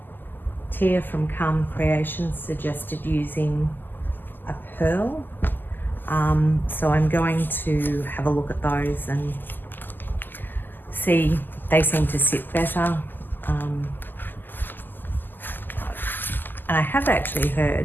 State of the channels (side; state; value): right; late; 0.090 ms